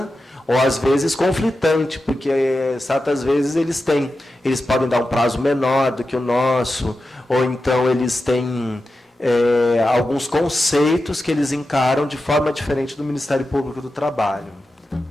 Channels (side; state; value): both; normal; correlation 0.91